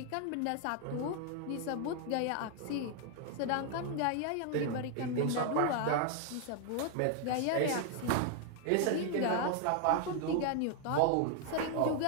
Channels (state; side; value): different; both; correlation 0.00